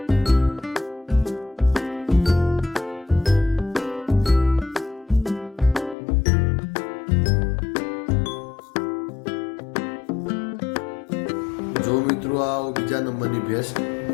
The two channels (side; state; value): right; drops out; at 6.0 s